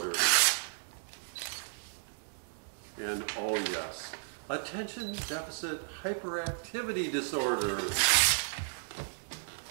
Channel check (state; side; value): silent; left; digital silence